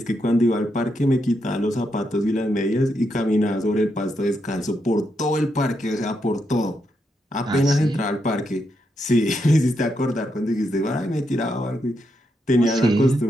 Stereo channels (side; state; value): both; normal; correlation 0.82